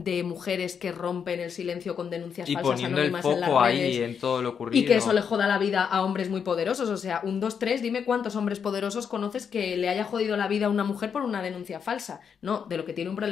mujeres que rompen el silencio con denuncias falsas anónimas en las redes en todo lo ocurrido. Y que eso le joda la vida a hombres muy poderosos. O sea, 1, 2, 3, dime cuántos hombres poderosos conoces que le haya jodido la vida a una mujer por una denuncia falsa. No, de lo que tiene un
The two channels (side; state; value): right; quieter; 7.0 dB